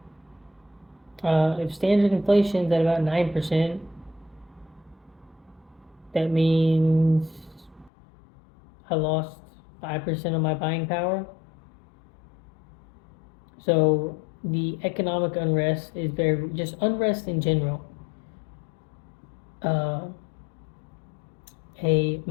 If standard inflation is at about 9%, that means I lost 5% of my buying power. So the economic unrest is just unrest in general. A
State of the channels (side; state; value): right; drops out; at 7.9 s